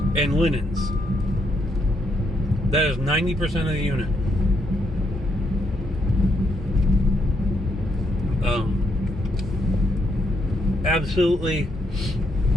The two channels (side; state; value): both; normal; correlation 0.76